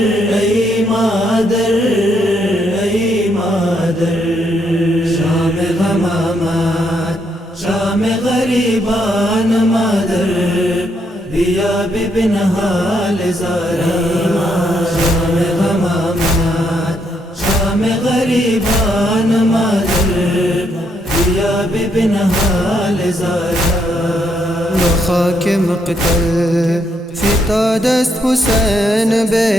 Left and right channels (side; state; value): both; normal; correlation 0.75